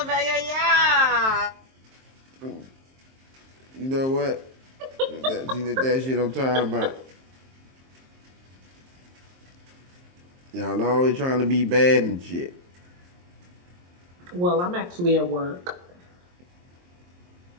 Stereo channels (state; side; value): late; left; 23 ms